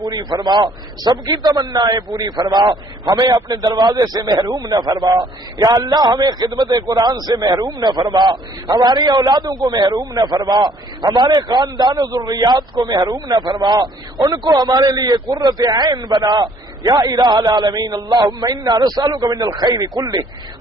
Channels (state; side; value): normal; both; correlation 0.61